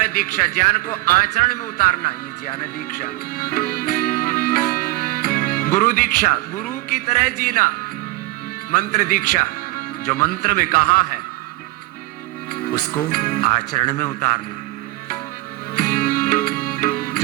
दीक्षा, ज्ञान को आचरण में उतारना, ये ज्ञान दीक्षा। गुरु दीक्षा, गुरु की तरह जीना। मंत्र दीक्षा, जो मंत्र में कहा है उसको आचरण में उतारना।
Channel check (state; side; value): quieter; left; 19.7 dB